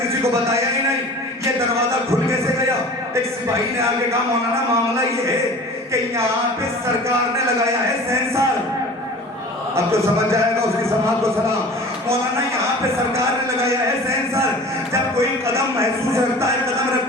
کسی کو بتایا ہی نہیں، یہ دروازہ کھل کیسے گیا؟ ایک سپاہی نے آگے کہا مولانا معاملہ یہ ہے کہ یہاں پہ سرکار نے لگایا ہے سینسر. اب تو سمجھ جائے گا، اس کی سماعت کو سلام. مولانا یہاں پہ سرکار نے لگایا ہے سینسر. جب کوئی قدم محسوس رکھتا ہے، قدم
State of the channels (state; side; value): normal; both; correlation 0.41